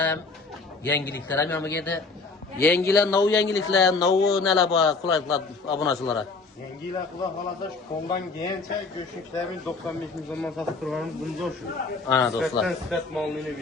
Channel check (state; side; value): quieter; right; 4.0 dB